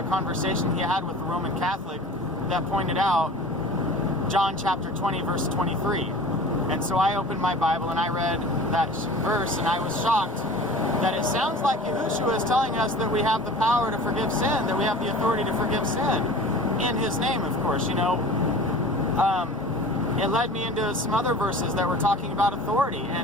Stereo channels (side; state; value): both; normal; correlation 0.40